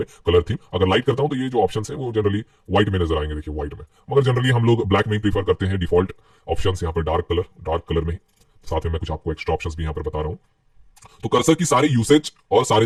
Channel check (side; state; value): both; identical; correlation 1.00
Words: कलर थीम अगर लाइट करता हूं तो ये जो ऑप्शन है वो जनरली व्हाइट में नजर आएंगे, देखिए व्हाइट में, मगर जनरली हम लोग ब्लैक में ही प्रीफर करते हैं। डिफॉल्ट ऑप्शन यहाँ पर डार्क कलर में ही, साथ में मैं कुछ आपको एक्स्ट्रा ऑप्शंस भी यहां पर बता रहा हूं। तो कर्सर की सारी यूसेज और सारे